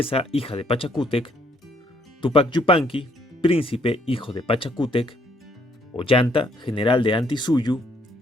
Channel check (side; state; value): both; normal; correlation 0.68